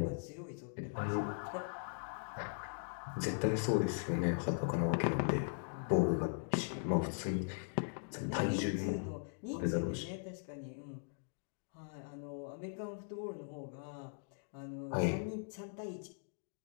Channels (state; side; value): silent; right; digital silence